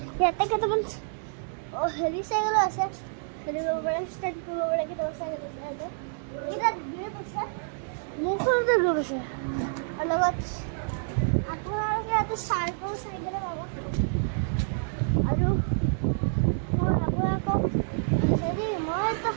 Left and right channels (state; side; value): silent; left; digital silence